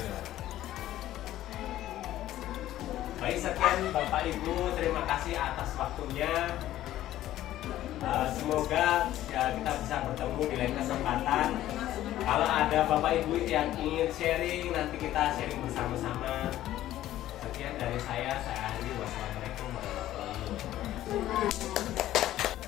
Baik, sekian Bapak Ibu, terima kasih atas waktunya. Semoga ya, kita bisa bertemu di lain kesempatan. Kalau ada Bapak Ibu yang ingin sharing, nanti kita sharing bersama-sama. Sekian dari saya akhiri. Wassalamualaikum warahmatullahi wabarakatuh.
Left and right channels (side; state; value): right; quieter; 13.7 dB